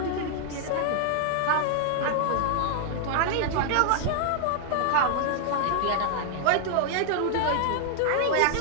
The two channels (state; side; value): different; both; correlation 0.00